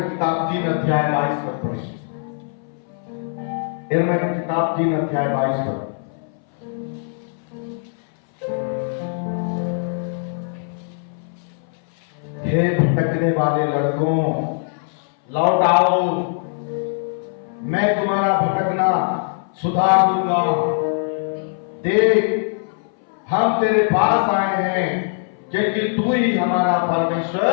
किताब 3 अध्याय 22 पद पढ़ें। यिर्मयाह की किताब 3 अध्याय 22 पद। हे भटकने वाले लड़कों, लौट आओ, मैं तुम्हारा भटकना सुधार दूंगा। देख, हम तेरे पास आए हैं क्योंकि तू ही हमारा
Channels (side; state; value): right; silent; 60 dB below the other